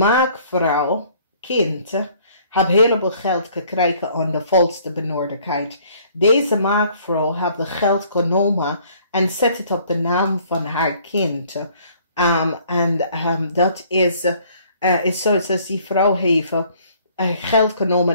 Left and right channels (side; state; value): both; inverted; correlation -0.59